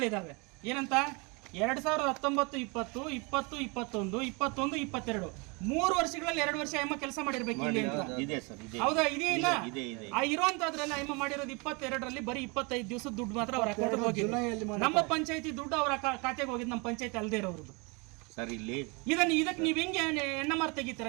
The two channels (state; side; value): quieter; left; 29.7 dB